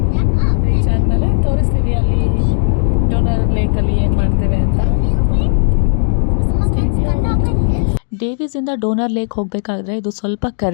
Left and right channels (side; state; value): right; silent; digital silence